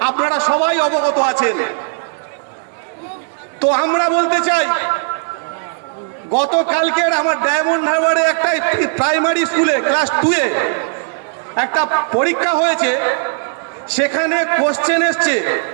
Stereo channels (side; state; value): left; silent; 63 dB below the other